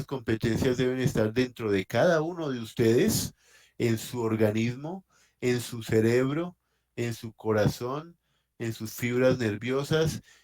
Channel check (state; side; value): identical; both; correlation 1.00